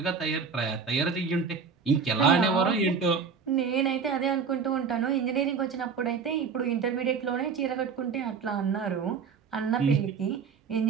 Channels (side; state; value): left; quieter; 5.7 dB